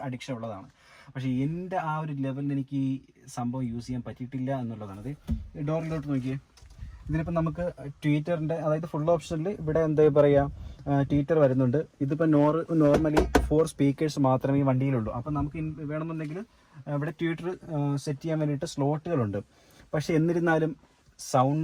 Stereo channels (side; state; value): both; identical; correlation 1.00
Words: അഡിക്ഷൻ ഉള്ളതാണ്. പക്ഷേ എൻ്റെ ആ ഒരു ലെവലിൽ എനിക്ക് ഈ സംഭവം യൂസ് ചെയ്യാൻ പറ്റിയിട്ടില്ല എന്നുള്ളതാണ്. അത് ഡോറിലോട്ട് നോക്കിയേ, ഇതിനിപ്പോൾ നമുക്ക് ട്വീറ്ററിൻ്റെ അതായത് ഫുൾ ഓപ്ഷനിൽ ഇവിടെ എന്താ പറയുക ട്വീറ്റർ വരുന്നുണ്ട്. ഇതിപ്പോൾ നോർമലി 4 സ്പീക്കേഴ്സ് മാത്രമേ ഈ വണ്ടിയിലുള്ളൂ. അപ്പം നമുക്ക് വേണമെന്നുണ്ടെങ്കിൽ ഇവിടെ ട്വീറ്റർ സെറ്റ് ചെയ്യാൻ വേണ്ടിയിട്ട് സ്ലോട്ടുകളുണ്ട്. പക്ഷെ എന്നിരുന്നാലും